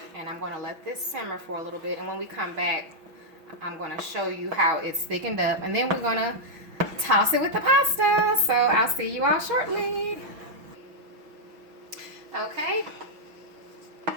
And I'm going to let this simmer for a little bit. And when we come back, I'm going to show you how it's thickened up. And then we're going to toss it with the pasta. So I'll see you all shortly. Okay.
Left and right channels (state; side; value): late; left; 6.1 ms